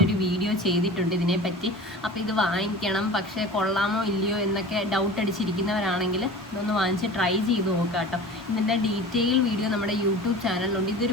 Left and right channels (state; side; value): normal; both; correlation 0.37